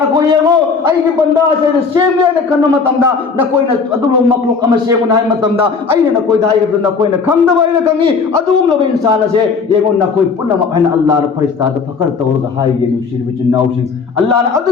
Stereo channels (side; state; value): right; quieter; 5.0 dB